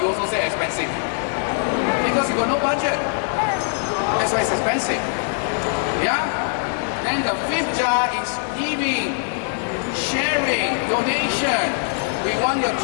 also say expensive. Because you got no budget. That's why it's expensive. Yeah? Then the fifth jar is giving, sharing, donation. We want your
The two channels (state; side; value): silent; right; 64 dB below the other